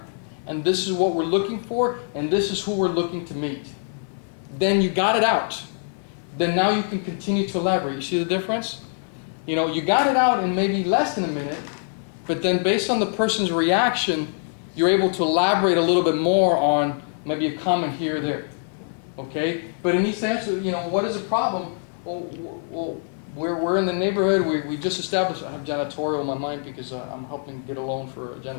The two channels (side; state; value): right; silent; 58 dB below the other